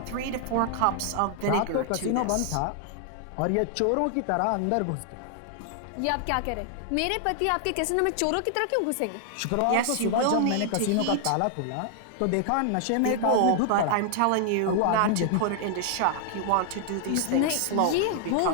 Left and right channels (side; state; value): both; different; correlation 0.00